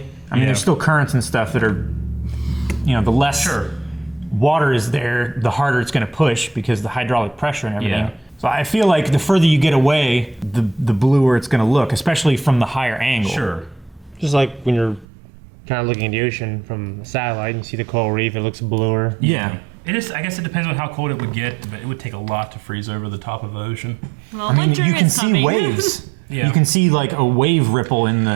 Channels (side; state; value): left; drops out; at 15.1 s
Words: I mean, there's still currents and stuff that are, the less water is there, the harder it's going to push because the hydraulic pressure and everything. Yeah. So I feel like the further you get away, the bluer it's going to look, especially from the higher angle. Sure. Just like when you're kind of looking at the ocean from a satellite and you see the coral reef, it looks bluer. Yeah. It is. I guess it depends on how cold it would get, but it would take a lot to freeze over the top of the ocean. Well, I mean, winter you can is see coming. waves. Yeah. You can see like a wave ripple in